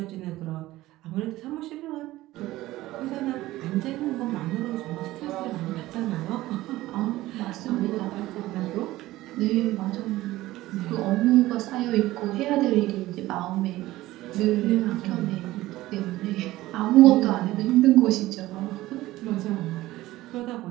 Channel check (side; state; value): left; quieter; 16.9 dB